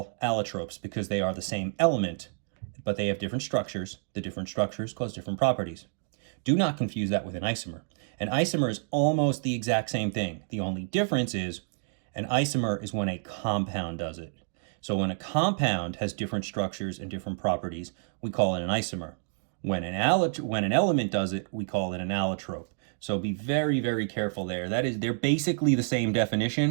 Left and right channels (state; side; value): silent; left; digital silence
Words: allotropes because they are the same element, but they have different structures. The different structures cause different properties. Do not confuse that with an isomer. An isomer is almost the exact same thing. The only difference is an isomer is when a compound does it. So when a compound has different structures and different properties, we call it an isomer. When an element does it, we call it an allotrope. So be very, very careful there. They're basically the same